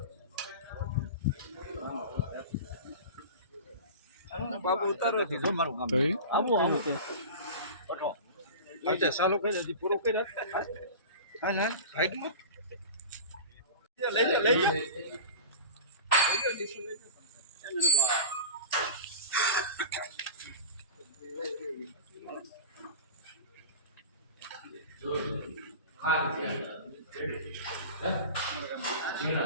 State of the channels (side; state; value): both; inverted; correlation -0.32